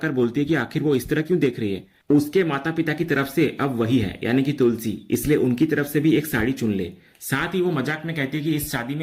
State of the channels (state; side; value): identical; both; correlation 1.00